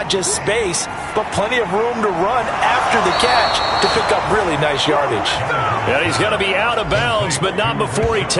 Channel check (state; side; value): identical; both; correlation 1.00